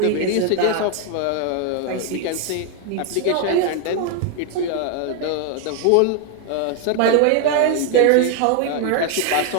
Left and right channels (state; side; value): different; both; correlation 0.01